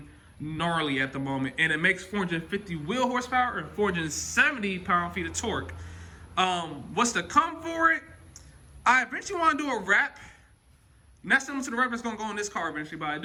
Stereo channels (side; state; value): both; identical; correlation 1.00